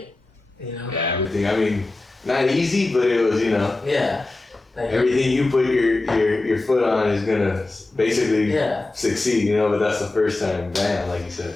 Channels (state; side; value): quieter; right; 3.1 dB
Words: Yeah, everything. I mean, not easy, but it was, Yeah. Like everything you put your foot on is gonna basically succeed, you know. But that's the first time, bam, like you said.